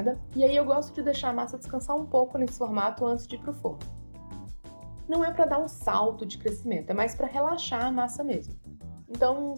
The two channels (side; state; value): both; inverted; correlation -1.00